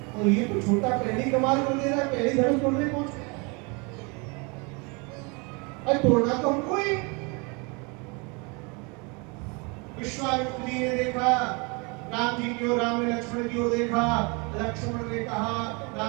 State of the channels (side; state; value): left; quieter; 30.5 dB